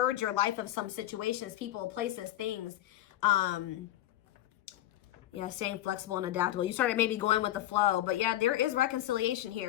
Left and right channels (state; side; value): quieter; right; 13.8 dB